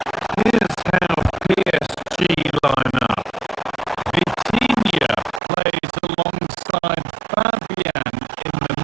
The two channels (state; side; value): drops out; left; at 5.4 s